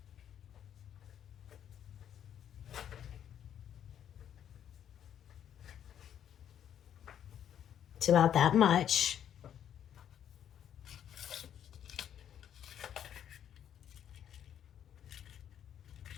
It's about that much.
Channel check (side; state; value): right; quieter; 9.7 dB